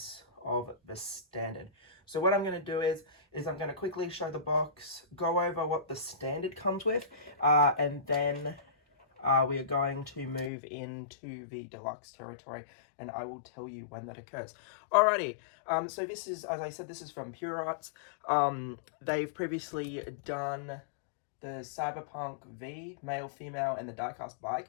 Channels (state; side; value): drops out; right; at 10.5 s